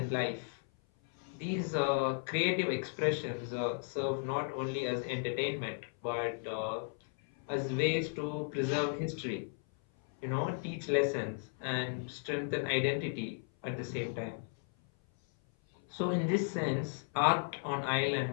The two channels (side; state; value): right; silent; 54 dB below the other